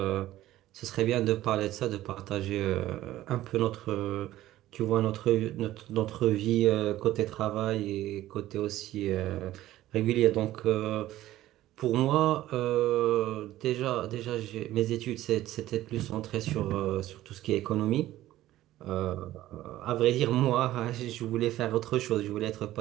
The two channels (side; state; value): left; quieter; 14.8 dB